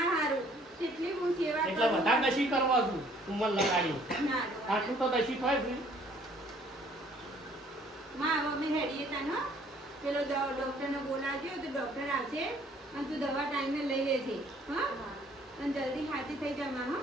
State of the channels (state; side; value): normal; both; correlation 0.59